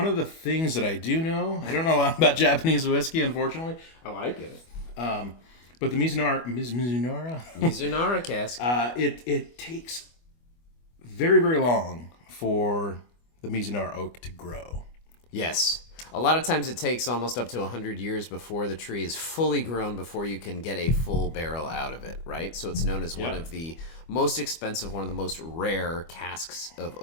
of the things that I do know, I don't know a lot about Japanese whiskey, unfortunately. I like it. But the Mizunara cask. It takes very, very long for the Mizunara oak to grow. Yes. A lot of times it takes almost up to 100 years before the tree is fully grown before you can get a full barrel out of it, right? So it's known as one of the most expensive, one of the most rare casks of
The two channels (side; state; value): right; late; 25 ms